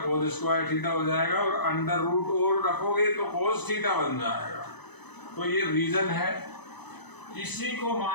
square theta हो जाएगा और अंडर रूट और रखोगे तो कोस थीटा बन जाएगा। तो ये रीजन है। इसी को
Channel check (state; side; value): late; right; 0.99 ms